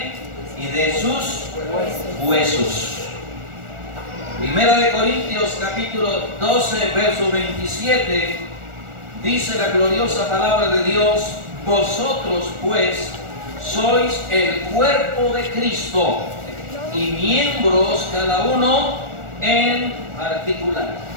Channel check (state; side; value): late; left; 1.4 ms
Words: y de sus huesos. Primera de Corintios capítulo 12 verso 27 dice la gloriosa palabra de Dios: vosotros pues sois el cuerpo de Cristo y miembros cada uno en particular.